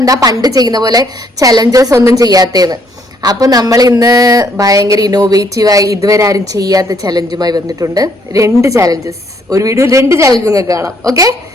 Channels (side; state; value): both; normal; correlation 0.68